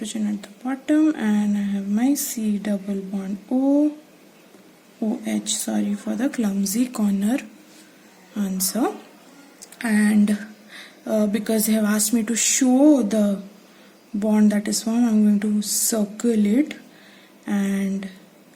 at the bottom, and I have my C double bond O, OH, sorry for the clumsy corner answer. And because they have asked me to show the bond that is formed, I'm going to circle it and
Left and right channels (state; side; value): identical; both; correlation 1.00